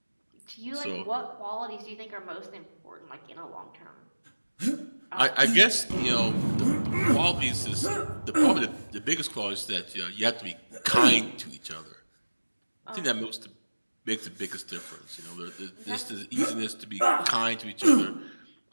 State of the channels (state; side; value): inverted; both; correlation -1.00